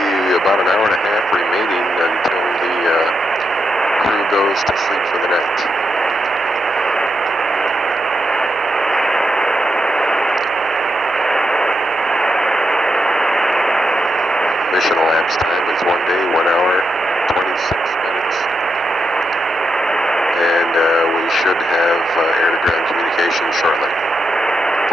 about an hour and a half remaining until the crew goes to sleep for the night. Mission elapsed time is 1 day, 1 hour, 26 minutes. And we should have air-to-ground communication shortly.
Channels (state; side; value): normal; both; correlation 0.84